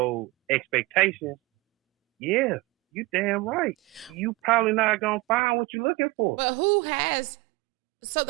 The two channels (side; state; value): left; drops out; at 5.4 s